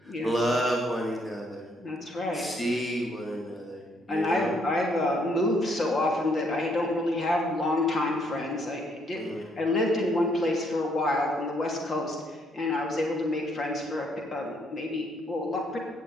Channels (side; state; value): both; normal; correlation 0.70